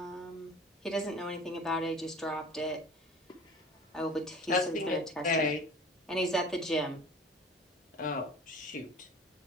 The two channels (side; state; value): both; normal; correlation 0.42